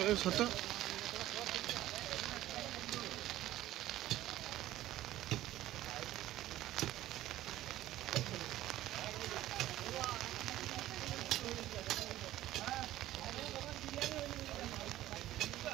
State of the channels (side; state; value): left; quieter; 14.6 dB